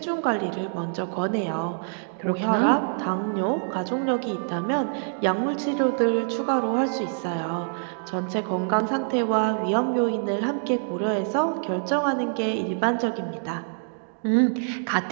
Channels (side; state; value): left; silent; digital silence